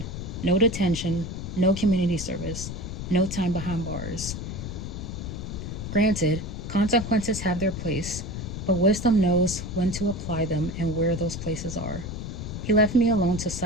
No detention, no community service, no time behind bars. Granted, consequences have their place, but wisdom knows when to apply them and where those places are. He left me alone to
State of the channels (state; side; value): noise; left; rumble, 7 dB below the sound